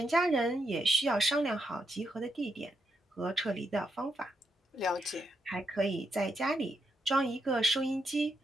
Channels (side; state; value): both; normal; correlation 0.81